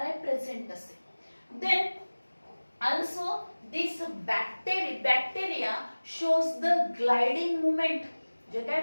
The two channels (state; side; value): inverted; both; correlation -1.00